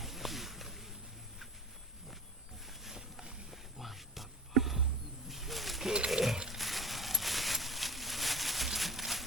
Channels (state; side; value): normal; both; correlation 0.37